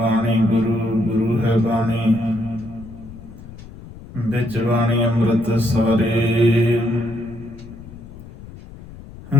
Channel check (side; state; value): left; noise; rumble, 17 dB below the sound